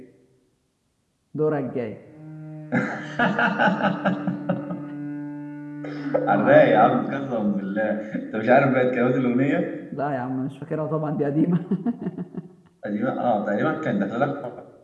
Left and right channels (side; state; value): both; identical; correlation 1.00